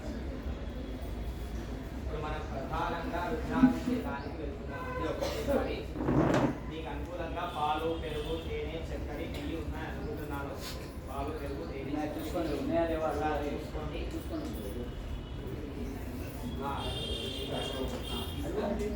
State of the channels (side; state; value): both; identical; correlation 1.00